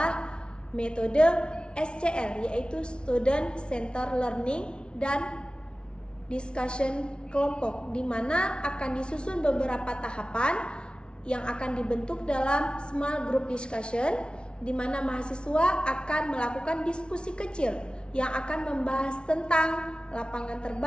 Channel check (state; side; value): late; right; 0.056 ms